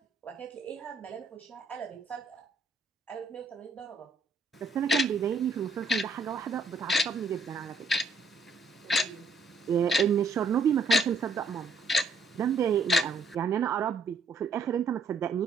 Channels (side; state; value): left; quieter; 3.6 dB